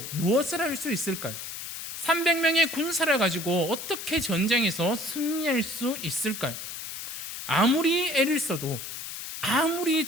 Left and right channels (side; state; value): left; noise; hiss, 8 dB below the sound